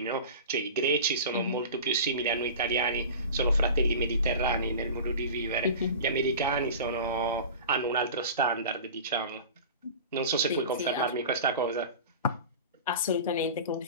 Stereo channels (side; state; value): both; inverted; correlation -0.34